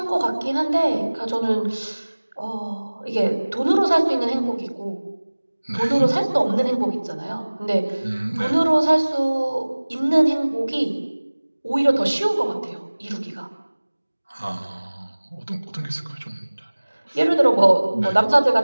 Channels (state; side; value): inverted; both; correlation -1.00